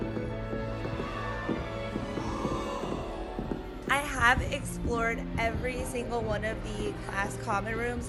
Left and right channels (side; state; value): both; identical; correlation 1.00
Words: I have explored every single one of the class common